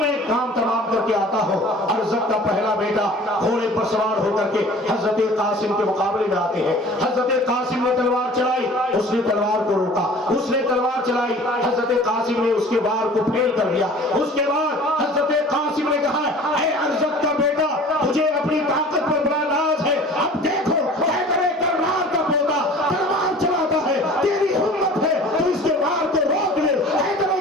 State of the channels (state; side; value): normal; both; correlation 0.45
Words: ایک کام تمام کر کے آتا ہوں. ارزق کا پہلا بیٹا گھوڑے پر سوار ہو کر کے حضرت قاسم کے مقابلے میں آتے ہیں. حضرت قاسم نے تلوار چلائی, اس نے تلوار کو روکا, اس نے تلوار چلائی, حضرت قاسم نے اس کے وار کو پھیل کر دیا. اس کے بعد حضرت قاسم نے کہا اے ارزق کا بیٹا تجھے اپنی طاقت پر بڑا ناز ہے, اب دیکھو حیدر کرار کا پوتا تلوار چلاتا ہے, تیری ہمت ہے تو اس کے وار کو روک لے. حیدر